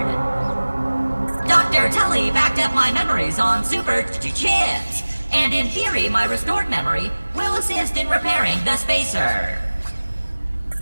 Dr. Tully backed up my memories on super chips, and in theory, my restored memory will assist in repairing the spacer.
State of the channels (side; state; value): both; inverted; correlation -1.00